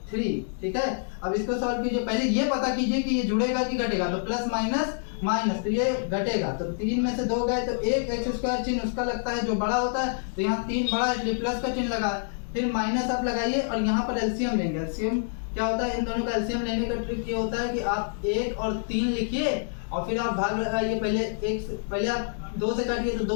3। ठीक है, अब इसको सॉल्व कीजिए। पहले ये पता कीजिए कि ये जुड़ेगा कि घटेगा, तो प्लस माइनस माइनस, तो ये घटेगा। तो 3 में से 2 गए तो एक एक्स स्क्वायर चिन्ह उसका लगता है जो बड़ा होता है, तो यहाँ 3 बड़ा इसलिए प्लस का चिन्ह लगा। फिर माइनस आप लगाइए और यहाँ पर एलसीएम लेंगे। एलसीएम क्या होता है? इन दोनों का एलसीएम लेने का ट्रिक ये होता है कि आप 1 और 3 लिखिए और फिर आप भाग लगाइए। पहले आप 2 से काटिए तो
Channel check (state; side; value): silent; right; digital silence